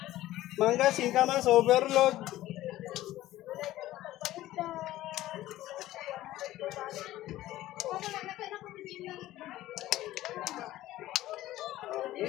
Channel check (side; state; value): right; quieter; 15.3 dB